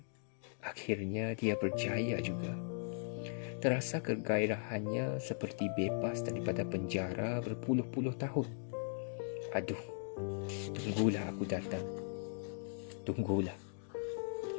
dia berjaya juga. Terasa kegairahannya seperti bebas daripada penjara berpuluh-puluh tahun. Aduh, tunggulah aku datang. Tunggulah.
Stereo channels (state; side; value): silent; right; 52 dB below the other